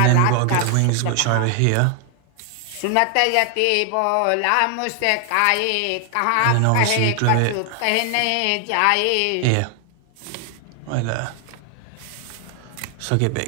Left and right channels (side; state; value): both; different; correlation 0.00